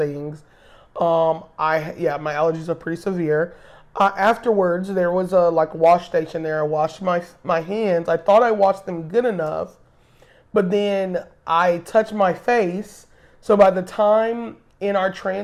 My allergies are pretty severe. Afterwards, there was a like wash station there. I washed my hands. I thought I washed them good enough, but then I touched my face. So by the time in our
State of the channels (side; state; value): both; identical; correlation 1.00